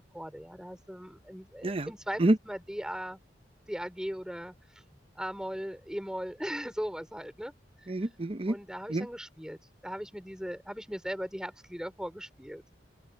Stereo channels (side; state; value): both; normal; correlation 0.89